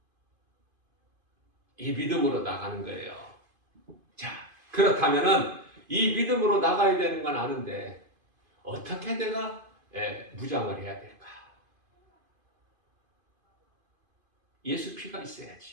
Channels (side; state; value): left; late; 2.5 ms